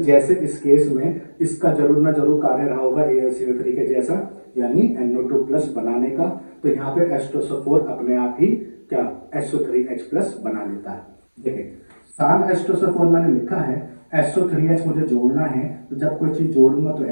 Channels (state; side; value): inverted; both; correlation -1.00